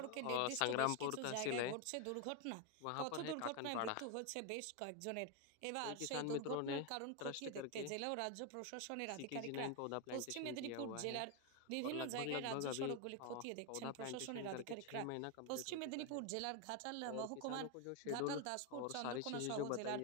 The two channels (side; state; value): both; different; correlation 0.01